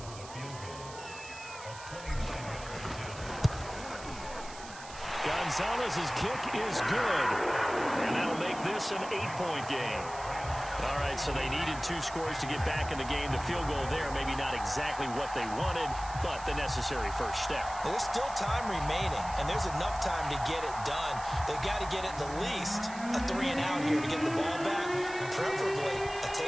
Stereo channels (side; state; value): right; noise; hiss, 15 dB below the sound